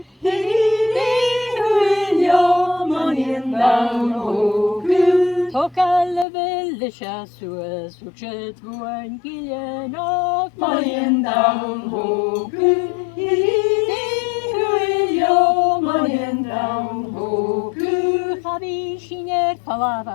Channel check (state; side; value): drops out; right; at 6.2 s